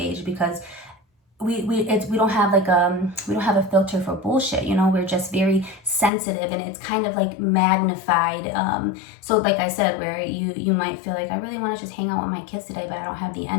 because we don't have a filter for bullshit. We're just very sensitive, and it's kind of like magnified. So like I said, where you might feel like I really want to just hang out with my kids today, but I don't have the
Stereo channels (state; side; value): drops out; right; at 6.1 s